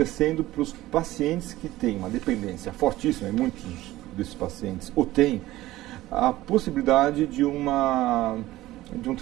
para os pacientes que têm uma dependência fortíssima, e muitos desses pacientes ou têm, a possibilidade de um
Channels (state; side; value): quieter; left; 16.5 dB